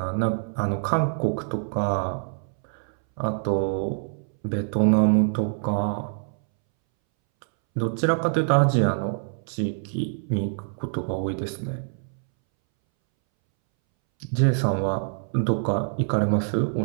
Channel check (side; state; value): left; silent; 62 dB below the other